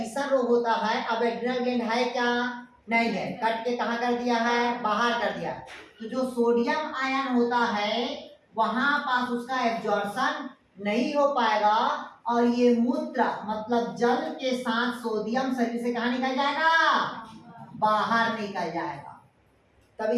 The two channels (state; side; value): identical; both; correlation 1.00